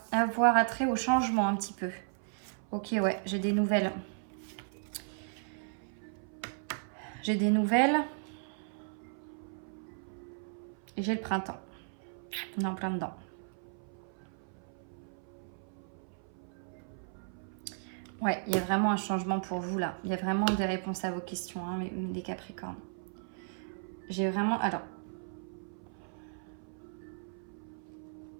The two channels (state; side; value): silent; left; 54 dB below the other